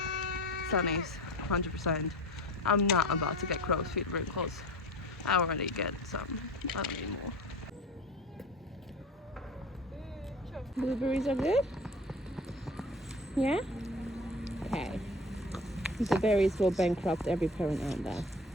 sunny's 100%. I'm not about to get crow's feet wrinkles. I already get some. I don't need more. Blueberries are good? Yeah? Okay. The berries will bankrupt every parent out there.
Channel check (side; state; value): both; normal; correlation 0.36